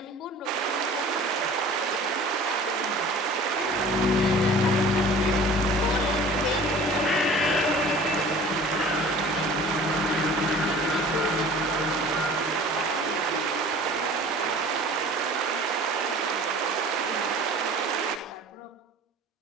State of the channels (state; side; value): normal; both; correlation 0.44